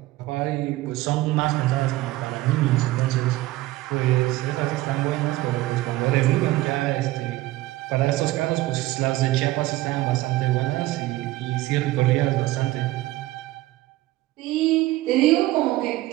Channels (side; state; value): left; quieter; 17.7 dB